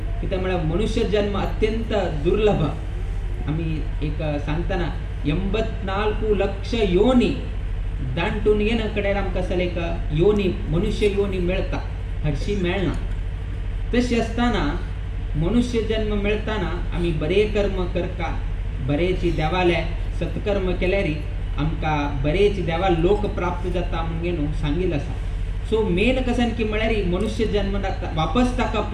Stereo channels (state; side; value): identical; both; correlation 1.00